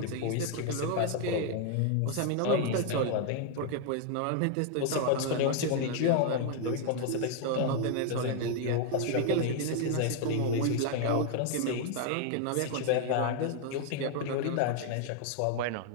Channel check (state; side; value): different; both; correlation 0.00